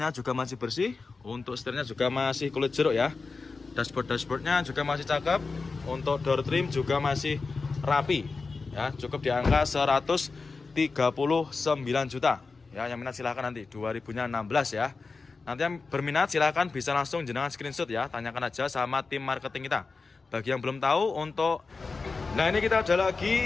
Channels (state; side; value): quieter; right; 4.2 dB